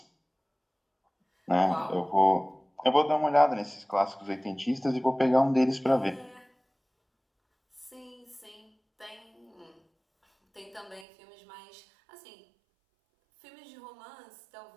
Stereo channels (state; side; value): drops out; left; at 11.1 s